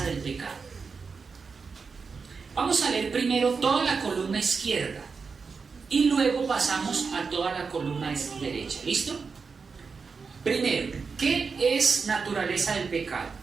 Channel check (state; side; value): quieter; left; 5.1 dB